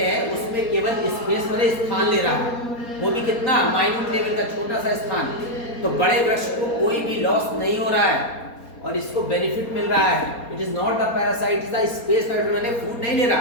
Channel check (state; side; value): late; right; 4.3 ms